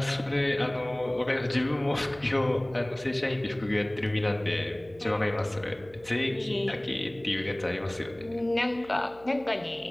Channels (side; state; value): right; noise; hum, 24 dB below the sound